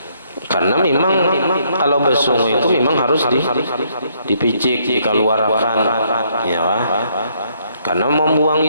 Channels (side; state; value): both; inverted; correlation -0.70